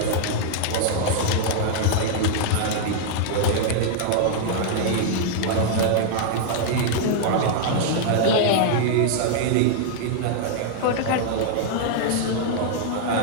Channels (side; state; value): both; different; correlation -0.01